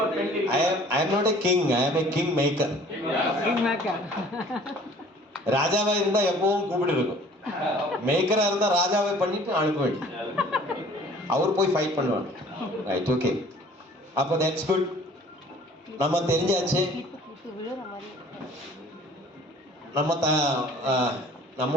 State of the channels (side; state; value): both; normal; correlation 0.51